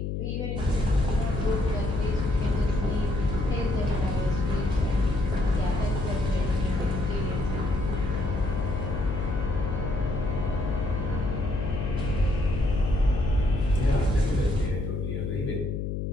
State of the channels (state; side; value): noise; left; hum, 2 dB below the sound